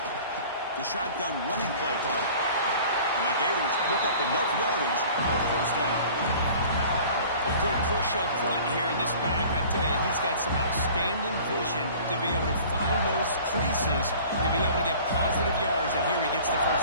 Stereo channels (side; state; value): both; inverted; correlation -0.46